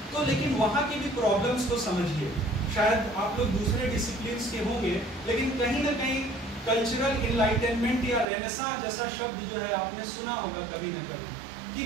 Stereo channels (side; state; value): left; drops out; at 8.2 s